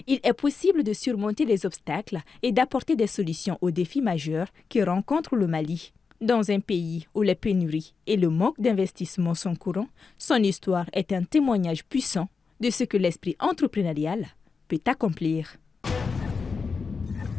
il est possible de surmonter les obstacles et d'apporter des solutions aux défis majeurs que rencontre le Mali. Dans un pays où les pénuries et le manque d'investissement sont courants, son histoire est un témoignage puissant de ce que l'esprit entrepreneurial peut accomplir.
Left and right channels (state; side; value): quieter; right; 5.0 dB